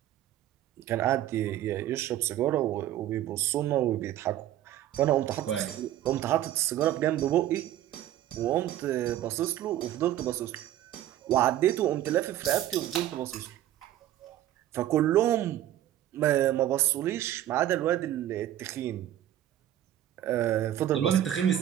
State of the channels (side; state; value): left; quieter; 12.5 dB